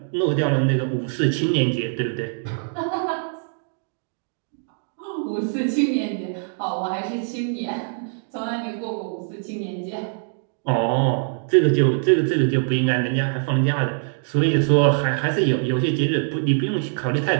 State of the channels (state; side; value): silent; left; digital silence